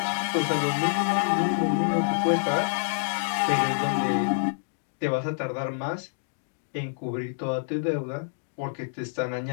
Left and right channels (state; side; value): silent; right; digital silence